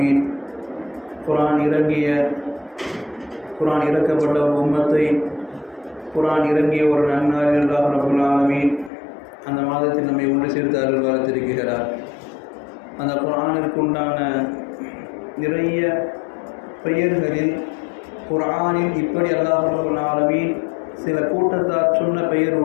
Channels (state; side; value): drops out; right; at 8.9 s